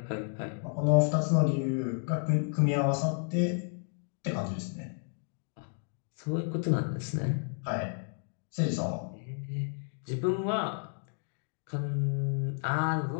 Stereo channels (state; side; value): silent; right; 57 dB below the other